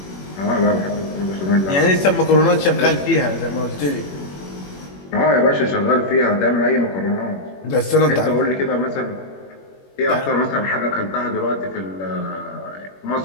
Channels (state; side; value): late; right; 21 ms